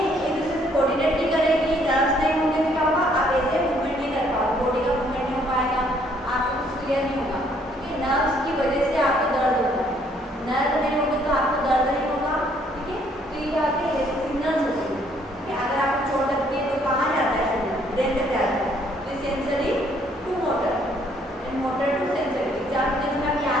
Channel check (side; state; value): both; normal; correlation 0.65